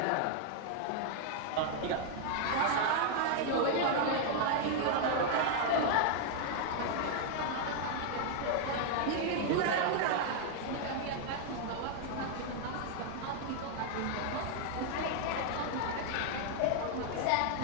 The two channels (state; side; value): different; both; correlation 0.00